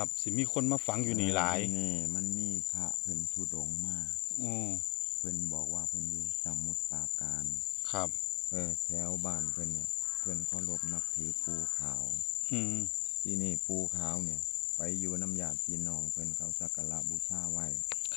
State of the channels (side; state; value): right; quieter; 27.1 dB